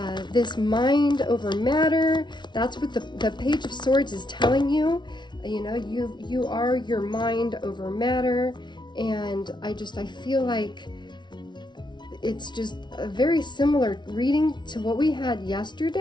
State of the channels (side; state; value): right; late; 0.22 ms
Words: This mind over matter, that's what the Page of Swords is telling you. You are your mind over matter, and I feel like it's just a very similar reading to what we had